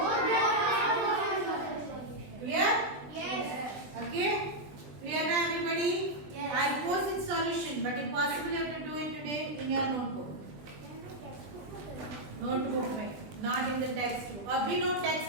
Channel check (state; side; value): late; left; 20 ms